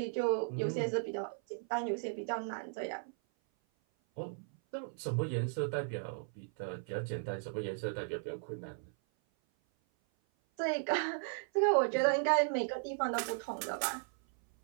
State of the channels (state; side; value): silent; left; 54 dB below the other